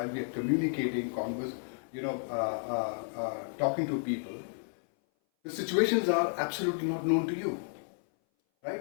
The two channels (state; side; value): silent; right; 56 dB below the other